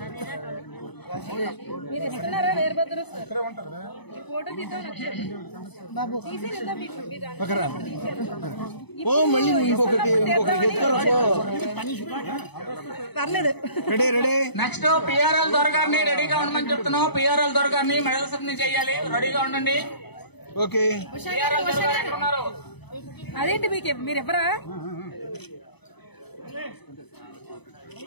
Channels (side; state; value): right; late; 0.99 ms